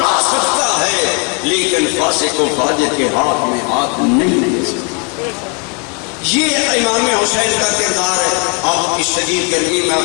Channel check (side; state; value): right; quieter; 35.2 dB